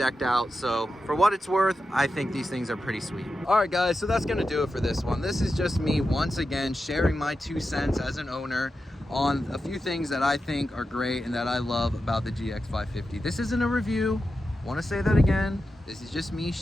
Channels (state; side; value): normal; both; correlation 0.90